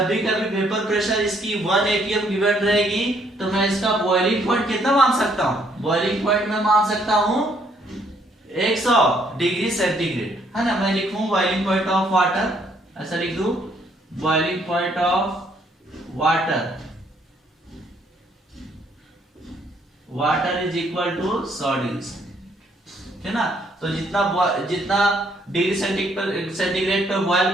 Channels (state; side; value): normal; both; correlation 0.68